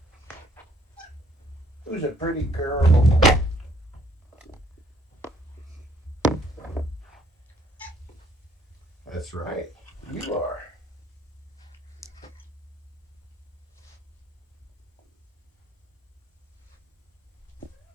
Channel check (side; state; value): both; normal; correlation 0.64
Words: who's a pretty girl. That's right, you are.